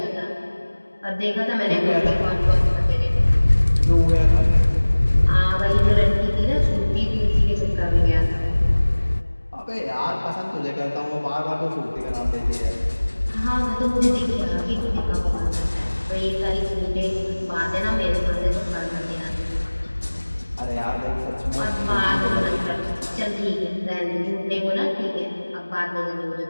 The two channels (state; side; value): inverted; both; correlation -1.00